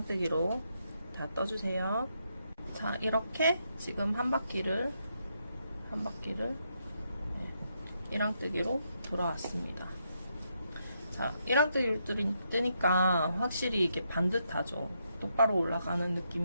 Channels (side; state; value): both; inverted; correlation -0.79